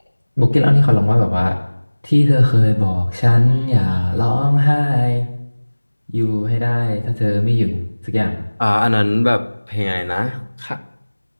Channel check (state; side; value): inverted; both; correlation -1.00